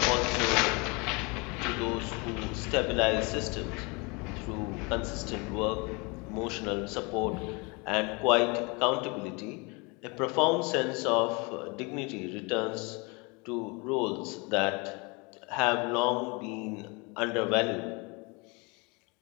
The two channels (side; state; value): right; quieter; 29.0 dB